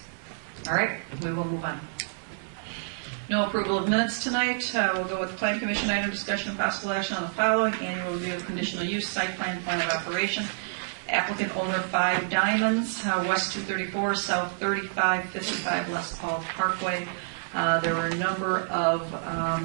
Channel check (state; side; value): silent; left; 59 dB below the other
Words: All right, we will move on. No approval of minutes tonight. We'll go with the Plan Commission item, discussion and possible action on the following: annual review of conditional use, site plan, plan of operation. Applicant owner 5 Diamonds, West 234, South 3555 Les Paul Parkway. There were a number of